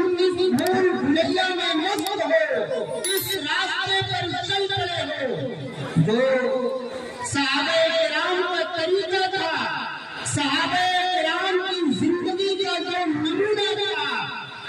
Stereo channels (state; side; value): identical; both; correlation 1.00